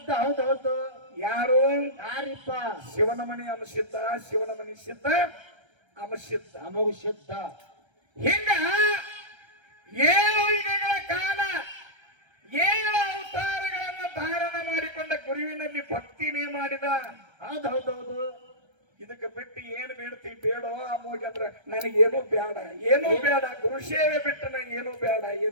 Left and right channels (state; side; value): late; left; 1.3 ms